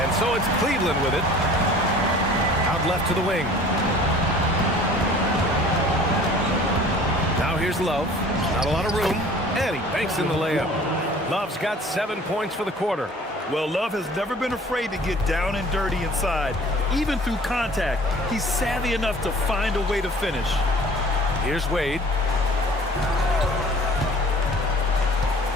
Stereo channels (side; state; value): both; normal; correlation 0.48